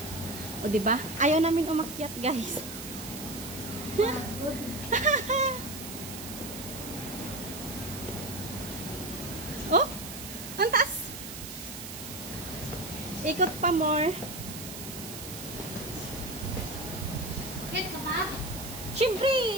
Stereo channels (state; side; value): noise; right; hiss, 10 dB below the sound